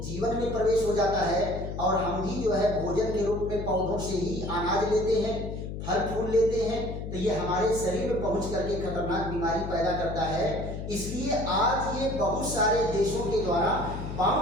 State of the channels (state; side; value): noise; left; hum, 7 dB below the sound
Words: में प्रवेश हो जाता है, और हम भी जो है भोजन के रूप में पौधों से ही अनाज लेते हैं, फल फूल लेते हैं। तो ये हमारे शरीर में पहुंच करके खतरनाक बीमारी पैदा करता है। इसलिए आज ये बहुत सारे देशों के द्वारा